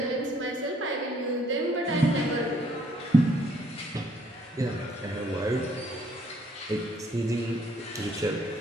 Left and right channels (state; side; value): normal; both; correlation 0.65